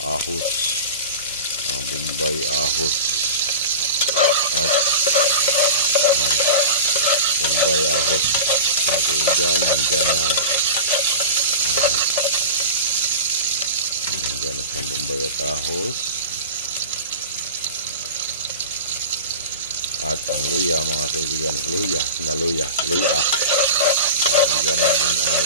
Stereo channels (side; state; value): both; inverted; correlation -0.30